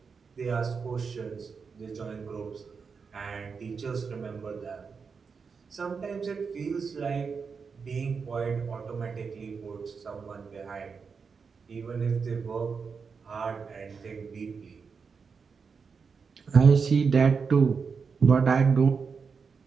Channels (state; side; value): quieter; left; 5.5 dB